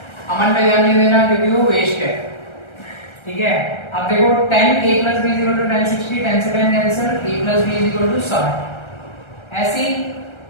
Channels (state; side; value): late; right; 1.3 ms